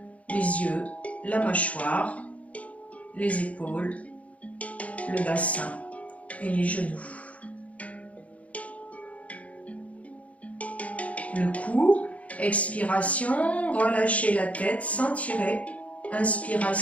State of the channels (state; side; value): late; right; 0.066 ms